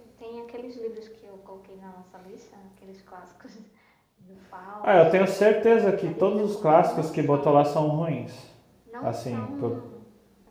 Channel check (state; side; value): identical; both; correlation 1.00